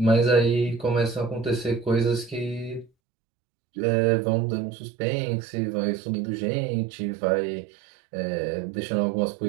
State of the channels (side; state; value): left; drops out; at 2.9 s